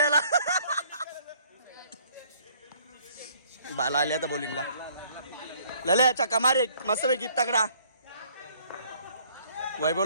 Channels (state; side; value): inverted; both; correlation -0.61